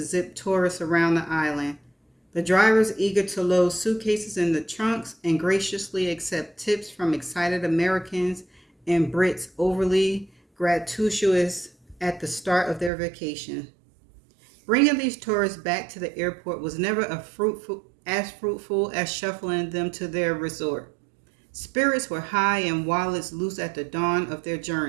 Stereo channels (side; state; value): left; drops out; at 12.9 s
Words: zip tourists around the island. The drivers eager to load suitcases in the trunks and graciously accept tips from excited Americans and Brits overly gratuitous at the start of their vacation. Bringing these tourists back to the airport was never fruitful as shuffling them to their resort. Spirits were high and wallets loose at the dawn of their